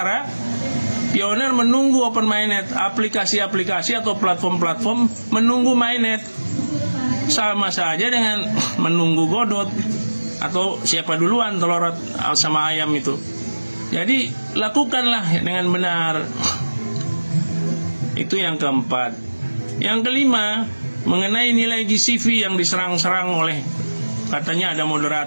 Pioneer menunggu open mainnet, aplikasi-aplikasi atau platform-platform menunggu mainnet. Sama saja dengan menunggu Godot atau siapa duluan telur sama ayam itu. Jadi lakukanlah dengan benar. Itu yang keempat. Yang kelima, mengenai nilai GCV yang diserang-serang oleh, katanya ada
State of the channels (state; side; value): inverted; both; correlation -1.00